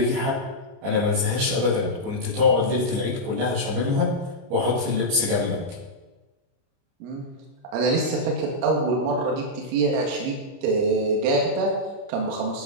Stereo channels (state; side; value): late; left; 30 ms